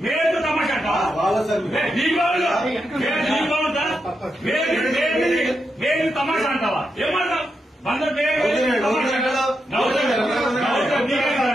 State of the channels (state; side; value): normal; both; correlation 0.85